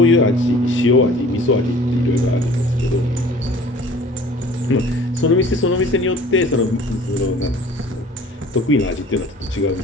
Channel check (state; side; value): normal; both; correlation 0.48